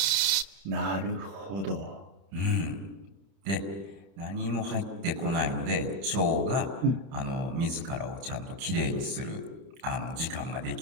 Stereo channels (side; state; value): left; late; 31 ms